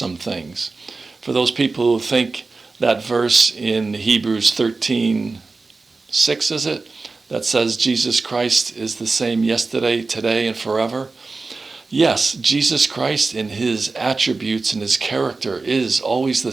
things. For those people who think that verse in Hebrews 13, 6, is it? That says Jesus Christ is the same yesterday, today, and forever. Yes, Jesus Christ in his attributes and his character is always the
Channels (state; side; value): quieter; left; 3.8 dB